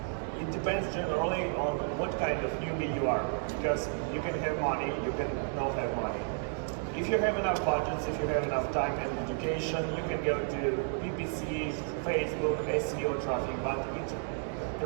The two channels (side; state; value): left; silent; 56 dB below the other